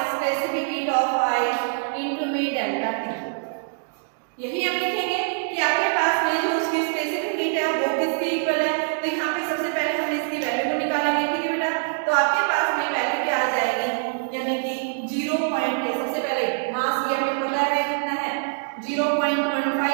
specific heat of ice into में डेल्टा टी। यही हम लिखेंगे कि आपके पास में जो उसकी स्पेसिफिक हीट है वो किसके इक्वल है, तो यहाँ पे सबसे पहले हम इसकी वैल्यू को निकालेंगे, ठीक है बेटा। तो आपके पास में वैल्यू क्या आ जाएगी, यानी कि 0 पॉइंट, सबसे पहले मास ये हमें पता है कितना है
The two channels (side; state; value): left; silent; digital silence